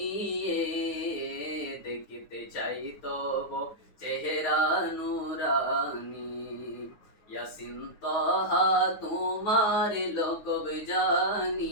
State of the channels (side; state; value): right; late; 9.4 ms